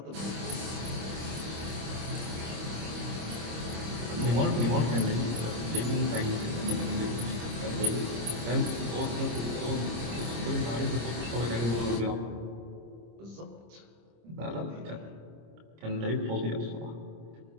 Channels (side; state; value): left; late; 26 ms